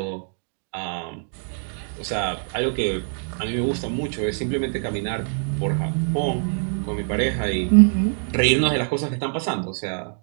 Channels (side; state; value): left; silent; 63 dB below the other